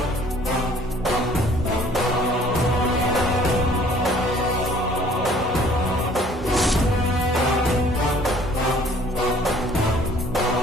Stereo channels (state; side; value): normal; both; correlation 0.55